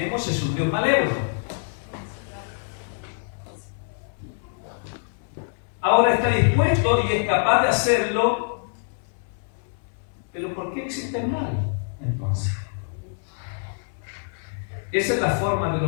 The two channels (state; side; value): silent; right; 62 dB below the other